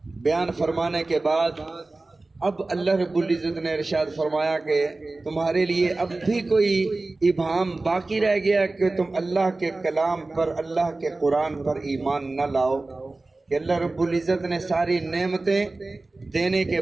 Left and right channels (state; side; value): quieter; left; 3.2 dB